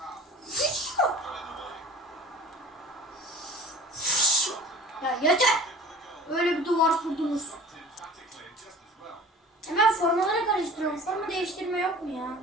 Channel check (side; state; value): both; normal; correlation 0.41